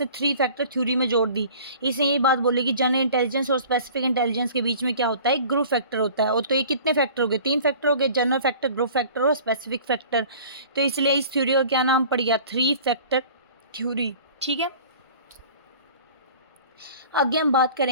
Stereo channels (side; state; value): both; inverted; correlation -0.45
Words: थ्री फैक्टर थ्योरी में जोड़ दी। इसने ये बात बोली कि जनरल इंटेलिजेंस और स्पेसिफिक इंटेलिजेंस के बीच में क्या होता है, ग्रुप फैक्टर होता है। और तो ये कितने फैक्टर हो गए? 3 फैक्टर हो गए, जनरल फैक्टर, ग्रुप फैक्टर और स्पेसिफिक फैक्टर। तो इसलिए इस थ्योरी का क्या नाम पड़ गया? Three factor theory. ठीक है। आगे हम बात